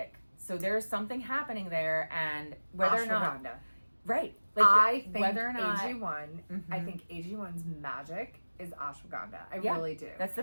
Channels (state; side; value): inverted; both; correlation -1.00